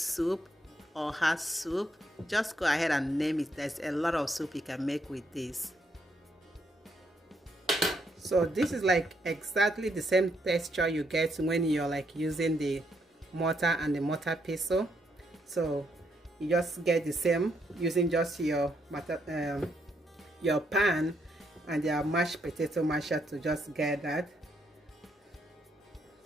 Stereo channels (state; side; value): normal; both; correlation 0.76